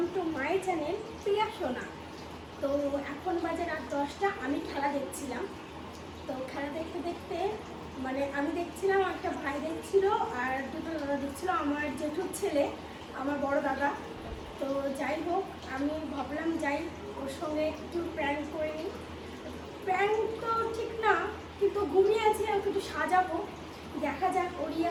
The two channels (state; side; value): identical; both; correlation 1.00